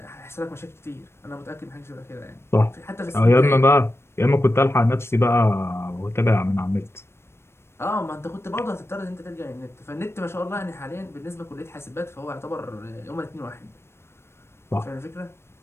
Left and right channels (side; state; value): right; late; 0.12 ms